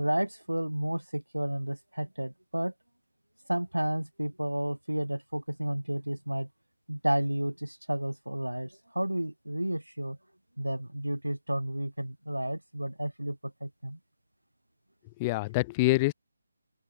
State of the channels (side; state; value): both; inverted; correlation -0.81